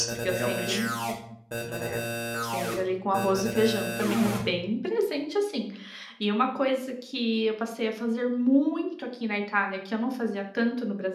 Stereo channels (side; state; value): both; identical; correlation 1.00